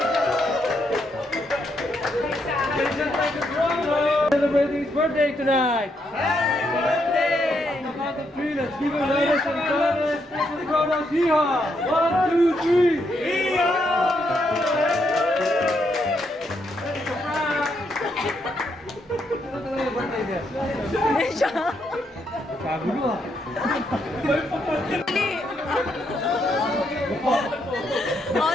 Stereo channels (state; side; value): normal; both; correlation 0.77